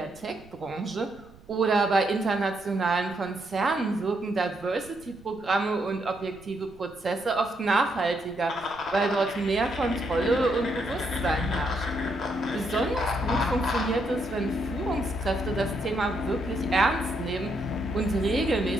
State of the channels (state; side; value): noise; right; rumble, 23 dB below the sound